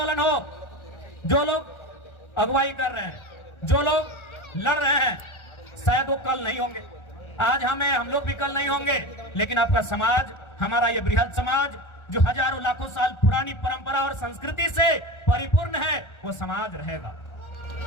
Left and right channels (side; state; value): right; late; 1.3 ms